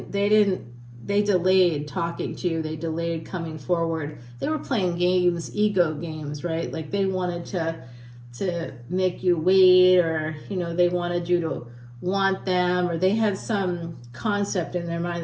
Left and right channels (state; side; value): identical; both; correlation 1.00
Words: they delayed talking to you. They delayed coming forward. They were playing games, ego games, right? Like they wanted to make you wait, or, you know, they wanted you to want them, or they had some concept in their mind